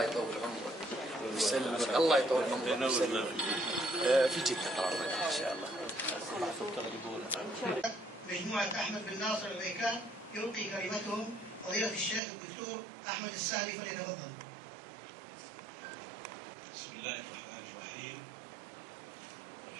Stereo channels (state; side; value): drops out; left; at 12.2 s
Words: يطول عمرك. يسلمك. الله يطول عمرك. في جدة قررنا إن شاء الله. مجموعة أحمد بن ناصر العبيكان يلقي كلمتهم فضيلة الشيخ الدكتور أحمد السهلي، فليتفضل. بسم الله الرحمن الرحيم،